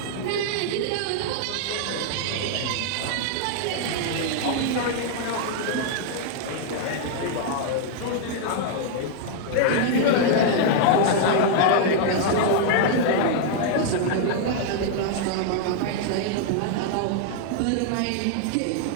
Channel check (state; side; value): different; both; correlation 0.00